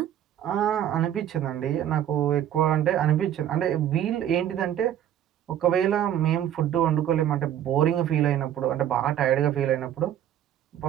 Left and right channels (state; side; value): quieter; left; 10.8 dB